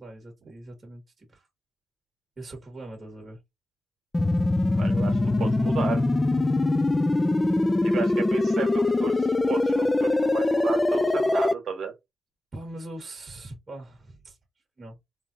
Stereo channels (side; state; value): both; normal; correlation 0.95